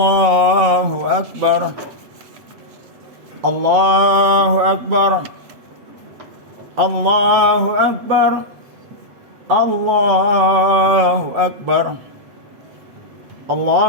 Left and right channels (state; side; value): late; left; 8.0 ms